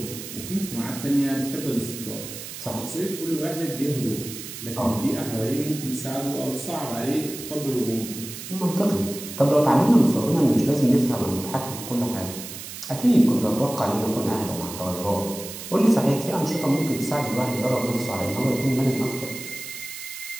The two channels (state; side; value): noise; right; hiss, 10 dB below the sound